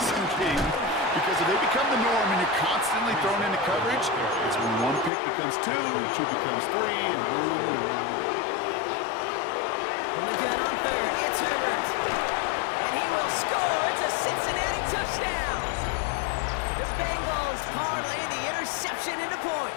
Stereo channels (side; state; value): right; drops out; at 5.1 s